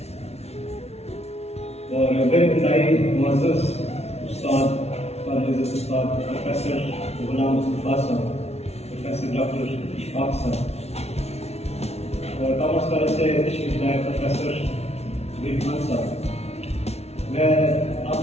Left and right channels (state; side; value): late; right; 0.31 ms